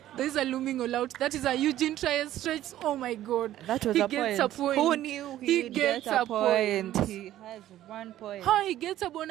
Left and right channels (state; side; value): quieter; left; 13.2 dB